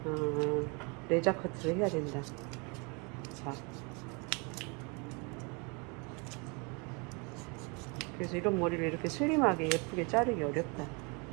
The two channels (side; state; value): left; quieter; 31.4 dB